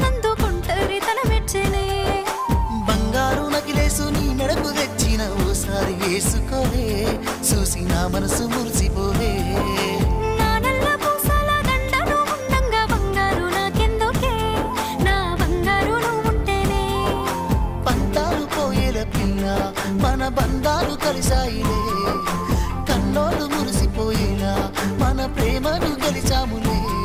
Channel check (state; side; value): identical; both; correlation 1.00